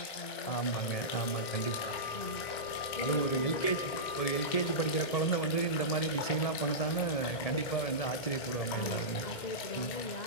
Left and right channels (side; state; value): right; late; 2.4 ms